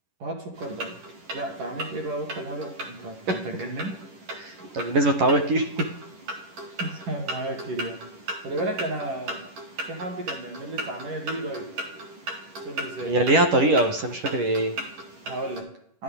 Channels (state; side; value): late; left; 11 ms